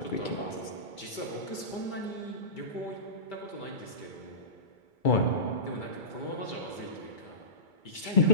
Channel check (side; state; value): right; late; 2.3 ms